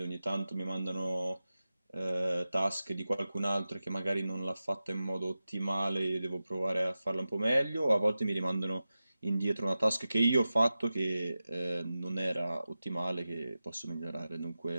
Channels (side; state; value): both; inverted; correlation -0.94